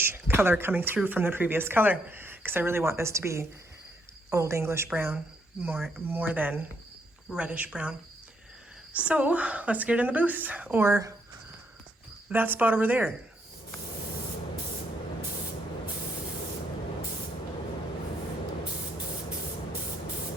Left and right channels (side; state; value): both; normal; correlation 0.74